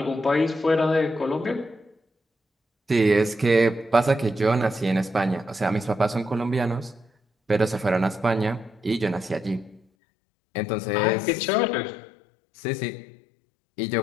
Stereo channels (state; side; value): drops out; right; at 9.8 s